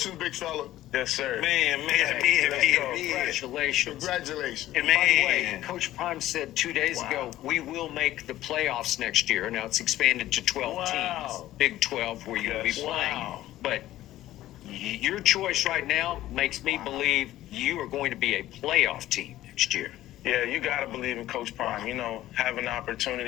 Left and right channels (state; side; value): quieter; right; 14.5 dB